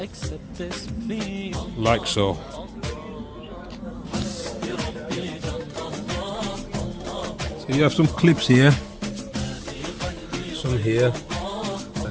Like so. So you have some clips here, some here,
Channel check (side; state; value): both; identical; correlation 1.00